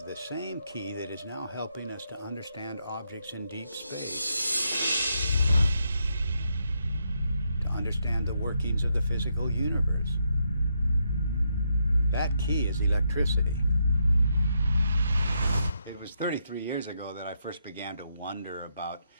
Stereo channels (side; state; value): both; inverted; correlation -0.79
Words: the same key that is now helping us to understand objects in deep space, to understand the workings of the physical universe. That key is electricity. It was 33 years ago that I first began to wonder about